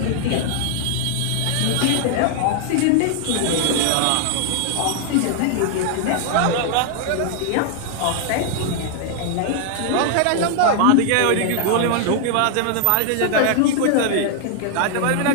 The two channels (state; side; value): different; both; correlation 0.00